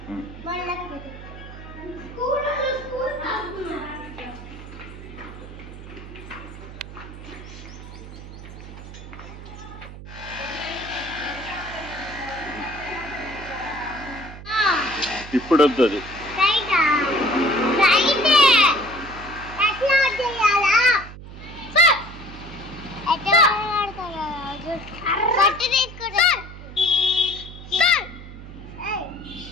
ఇప్పుడు వద్దు అది.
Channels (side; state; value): right; noise; hum, 14 dB below the sound